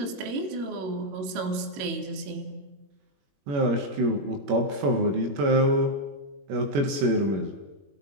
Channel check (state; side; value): late; left; 21 ms